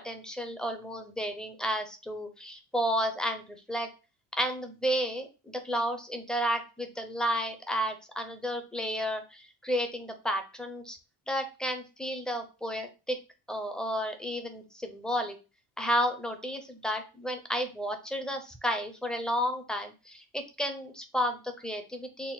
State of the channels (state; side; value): normal; both; correlation 0.66